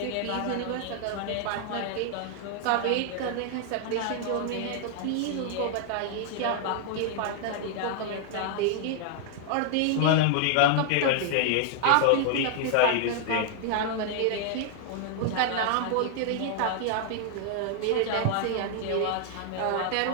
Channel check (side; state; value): both; different; correlation 0.00